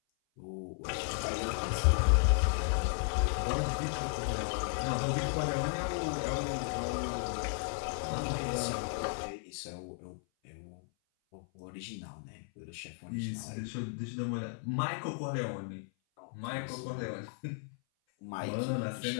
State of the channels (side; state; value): right; silent; 55 dB below the other